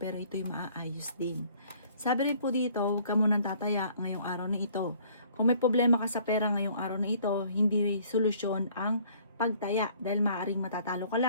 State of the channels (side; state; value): both; inverted; correlation -0.58